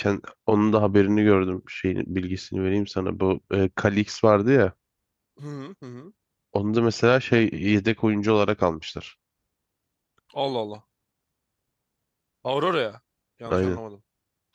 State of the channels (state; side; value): identical; both; correlation 1.00